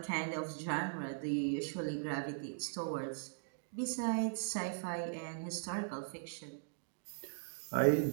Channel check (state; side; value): silent; left; digital silence